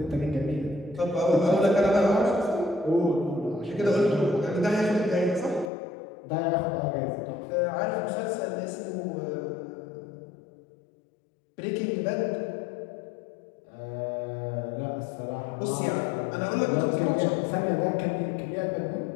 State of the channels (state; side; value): drops out; right; at 5.7 s